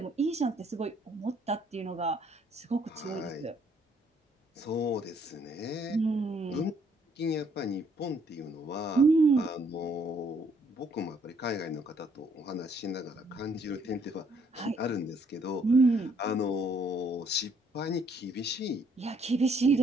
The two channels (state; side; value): normal; both; correlation 0.66